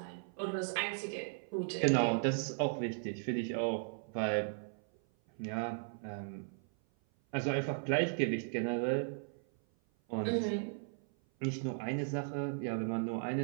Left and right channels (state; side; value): silent; left; 53 dB below the other